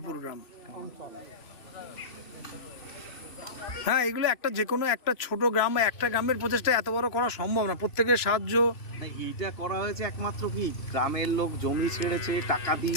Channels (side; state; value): right; late; 3.1 ms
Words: গ্রাম। হ্যাঁ, এগুলো একটা যে কোনো একটা ছোট গ্রাম বা একটা গ্রামের প্রচেষ্টা এত বড় করা সম্ভব না, প্রত্যেকের সাহায্য। না, এইটা করা হয়েছে একমাত্র কি গ্রামের লোক জমি ছেড়েছে, টাকা